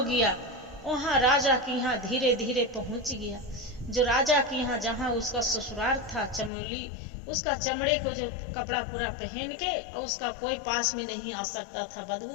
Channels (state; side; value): drops out; right; at 6.5 s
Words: गया। वहाँ राजा के यहाँ धीरे धीरे पहुँच गया। जो राजा के यहाँ जहाँ उसका ससुराल था, चमोली, उसका चमड़े को जो कपड़ा पूरा पहन के और उसका कोई पास में नहीं आ सकता था,